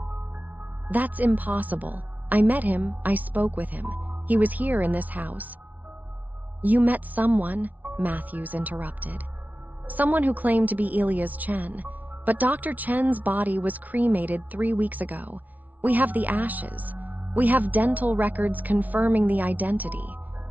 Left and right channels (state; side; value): late; left; 0.074 ms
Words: "That's impossible. I met him, I spoke with him. He was here in this house." "You met someone," Matthews interrupted. "Someone who claimed to be Elias Chen. But Dr. Chen's body was cremated 3 weeks ago. We have the ashes. We have dental records confirming the identity.